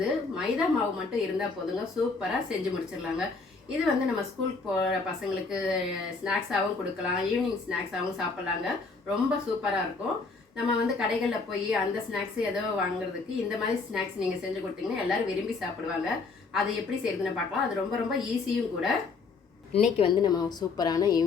மைதா மாவு மட்டும் இருந்தால் போதுங்க, சூப்பராக செஞ்சு முடிச்சிடலாங்க. இது நம்ம ஸ்கூலுக்கு போகிற பசங்களுக்கு ஸ்நாக்ஸாகவும் கொடுக்கலாம், ஈவினிங் ஸ்நாக்ஸாகவும் சாப்பிட்லாங்க. ரொம்ப சூப்பராக இருக்கும். நம்ம கடைகளில் போய் அந்த ஸ்நாக்ஸ் ஏதோ வாங்குறதுக்கு இந்த மாதிரி ஸ்நாக்ஸ் நீங்கள் செஞ்சு கொடுத்தீங்கன்னா எல்லோரும் விரும்பி சாப்பிடுவாங்க. அது எப்படி செய்யுதுன்னு பார்க்கலாம். அது ரொம்ப ரொம்ப ஈஸியும் கூட. இன்றைக்கி நம்ம சூப்பரான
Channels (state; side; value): quieter; right; 4.3 dB